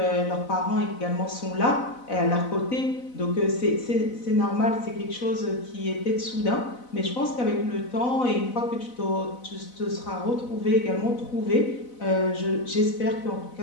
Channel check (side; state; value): right; late; 4.0 ms